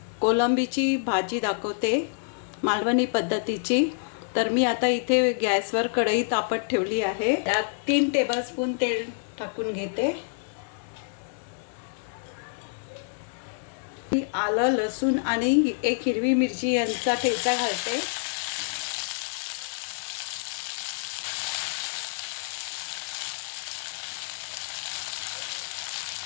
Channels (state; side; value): silent; right; 60 dB below the other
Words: कोलंबीची भाजी दाखवते, मालवणी पद्धतीची। तर मी आता इथे गॅसवर कढई तापत ठेवली आहे। त्यात 3 टेबलस्पून तेल टाकून घेते। आलं, लसूण आणि 1 हिरवी मिरची यांचा ठेचा घालते।